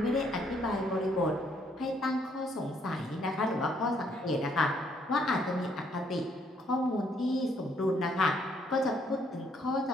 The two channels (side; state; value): both; normal; correlation 0.69